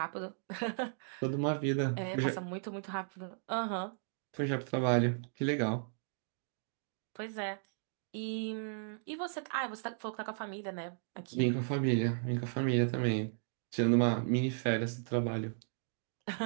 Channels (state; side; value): silent; left; digital silence